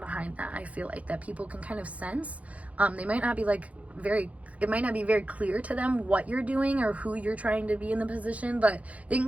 that. I feel like that people can kind of sense. They might not be it might not be very clear to them what you're doing or who you're trying to be in the position, but they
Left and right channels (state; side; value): late; left; 0.067 ms